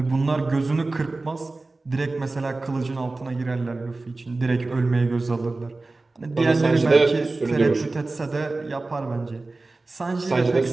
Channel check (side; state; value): left; quieter; 3.3 dB